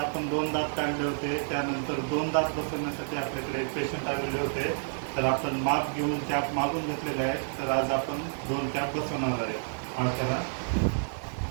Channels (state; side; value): silent; left; 58 dB below the other